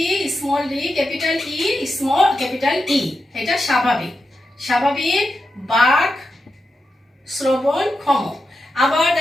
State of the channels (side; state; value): both; normal; correlation 0.88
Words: small D, capital E small capital E, এটা স্বাভাবিক, স্বাভাবিক বাক শ্রবণক্ষম। আবার